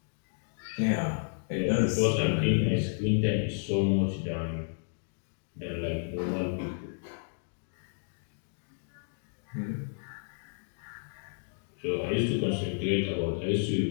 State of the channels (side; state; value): right; silent; digital silence